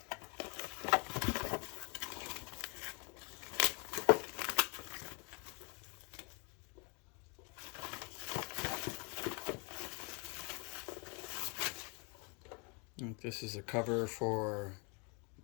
This is a cover for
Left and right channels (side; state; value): right; quieter; 33.3 dB